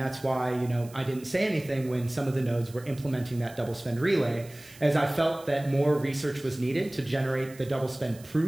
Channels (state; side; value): noise; right; hiss, 21 dB below the sound